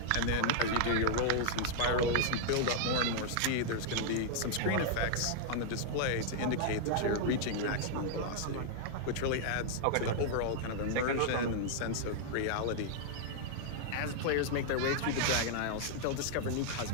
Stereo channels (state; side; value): different; both; correlation -0.01